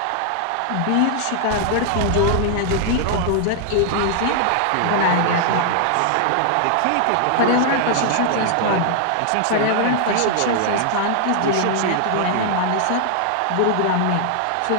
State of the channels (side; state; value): both; different; correlation 0.00